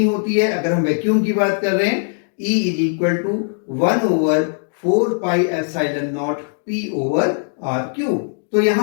होती है। अगर हम वैक्यूम की बात कर रहे हैं, E is equal to 1/4 pi epsilon not P over R cube. तो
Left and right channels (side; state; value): right; silent; 66 dB below the other